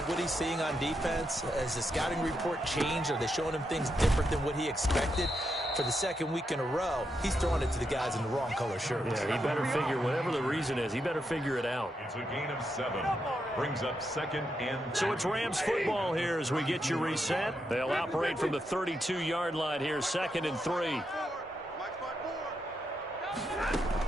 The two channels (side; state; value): both; normal; correlation 0.83